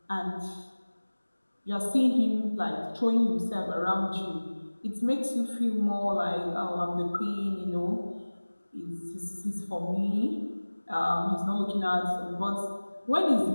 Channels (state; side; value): inverted; both; correlation -1.00